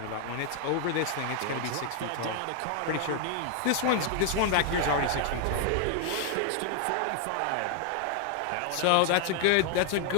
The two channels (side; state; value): both; different; correlation 0.00